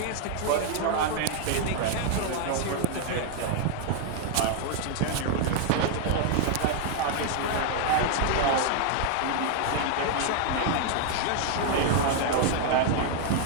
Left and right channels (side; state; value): both; different; correlation 0.00